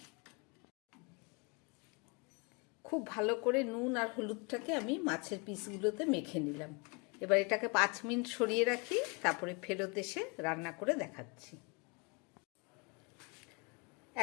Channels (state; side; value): quieter; right; 31.5 dB